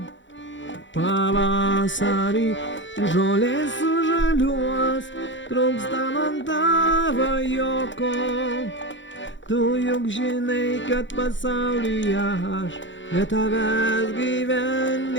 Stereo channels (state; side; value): late; right; 0.54 ms